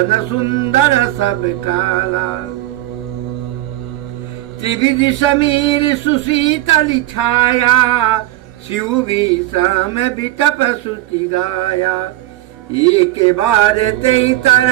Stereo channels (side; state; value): left; quieter; 16.2 dB